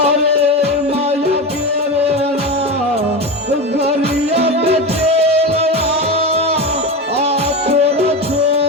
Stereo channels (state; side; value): normal; both; correlation 0.21